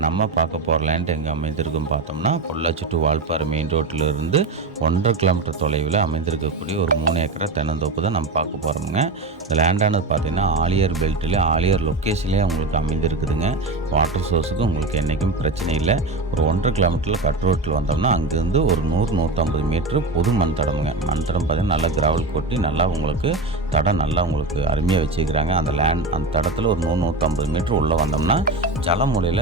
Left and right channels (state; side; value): quieter; left; 3.4 dB